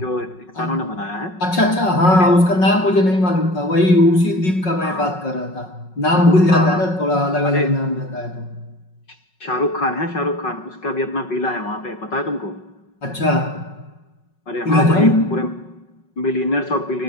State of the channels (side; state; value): right; late; 5.4 ms